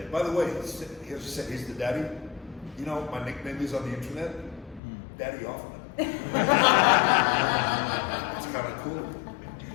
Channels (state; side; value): drops out; right; at 4.8 s